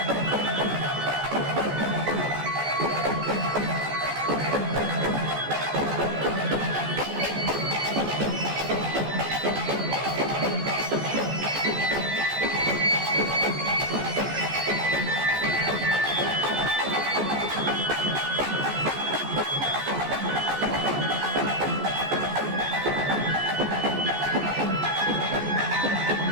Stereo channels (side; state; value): left; late; 14 ms